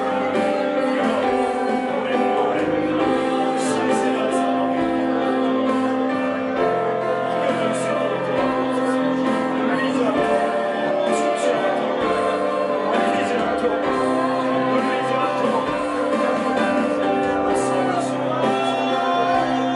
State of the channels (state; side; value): identical; both; correlation 1.00